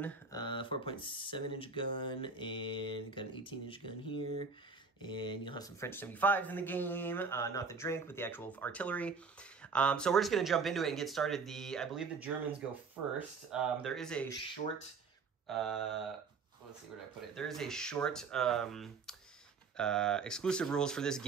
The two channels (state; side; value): quieter; left; 5.0 dB